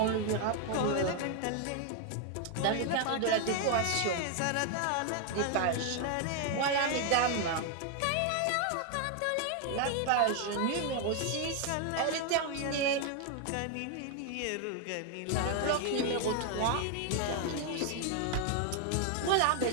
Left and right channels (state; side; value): different; both; correlation 0.01